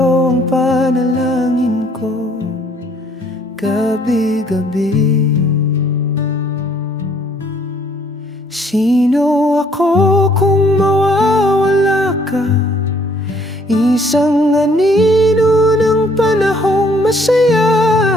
ang panalangin ko gabi-gabi? Sino ako kung mawawala ka? Isang anino ng panahong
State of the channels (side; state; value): both; normal; correlation 0.63